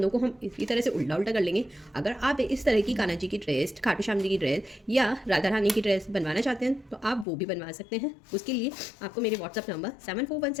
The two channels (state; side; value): drops out; right; at 7.2 s